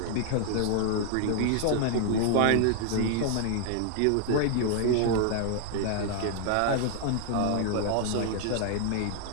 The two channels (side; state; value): both; different; correlation 0.00